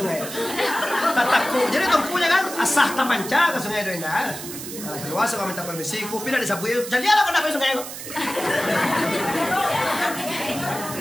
Tatakku. Jadi tungkunya kan asah tamanca ke sungai itu indah. Keluar semua minta permisi, ku pindah di sapu. Jadi ala kena ke sungai ko.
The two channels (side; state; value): right; noise; hiss, 10 dB below the sound